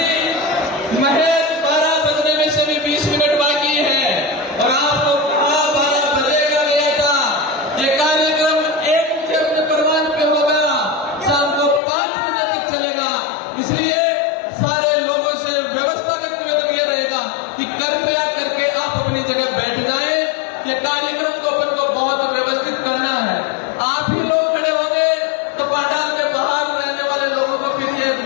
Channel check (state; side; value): drops out; right; at 11.8 s